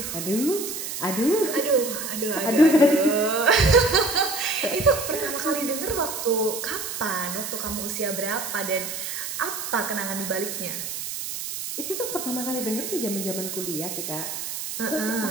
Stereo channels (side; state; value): right; noise; hiss, 6 dB below the sound